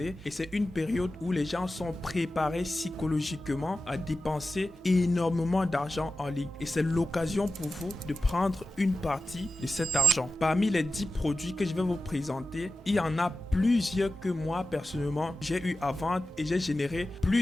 et c'est une période où les gens sont préparés psychologiquement à dépenser énormément d'argent en ligne et c'est l'occasion pour vous de prendre une partie de cet argent. Parmi les 10 produits que je vais vous présenter, il y en a plusieurs que moi personnellement j'ai eu à vendre et j'ai généré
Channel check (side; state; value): both; normal; correlation 0.93